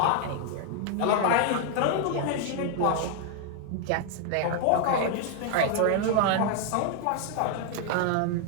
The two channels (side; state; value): both; different; correlation 0.00